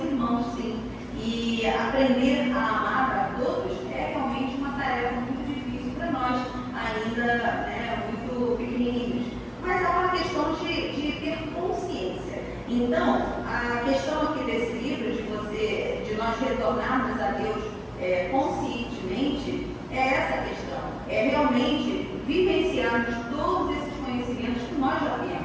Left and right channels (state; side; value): identical; both; correlation 1.00